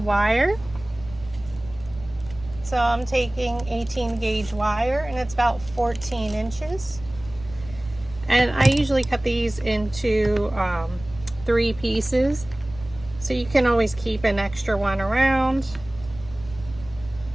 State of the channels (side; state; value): right; noise; rumble, 17 dB below the sound